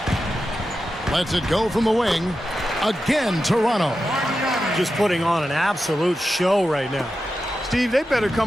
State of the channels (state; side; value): normal; both; correlation 0.91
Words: Lets it go from the wing. Again, Toronto. Just putting on an absolute show right now. Steve, they better